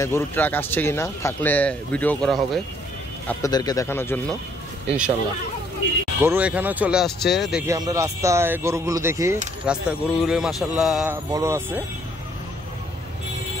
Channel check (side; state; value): both; normal; correlation 0.65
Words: গরুর ট্রাক আসছে কিনা, থাকলে ভিডিও করা হবে আপনাদেরকে দেখানোর জন্য ইনশাল্লাহ। গরু এখানেও চলে আসছে, দেখি আমরা রাস্তায় গরুগুলো দেখি। রাস্তায় গরুগুলো মাশাআল্লাহ বড় আছে,